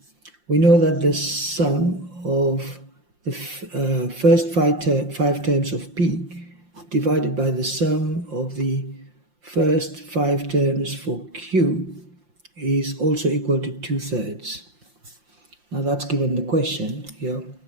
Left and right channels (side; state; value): left; late; 5.7 ms